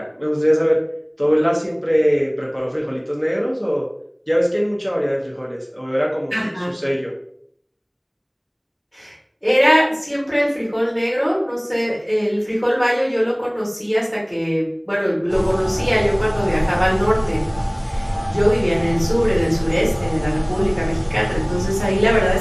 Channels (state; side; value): identical; both; correlation 1.00